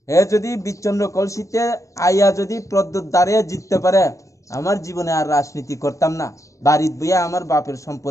হে যদি বিচন্দ্র কলসিতে আইয়া যদি প্রদ্যুৎ দাঁড়িয়ে জিততে পারে আমার জীবনে আর রাজনীতি করতাম না বাড়িত বইয়া আমার বাপের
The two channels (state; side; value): late; right; 0.15 ms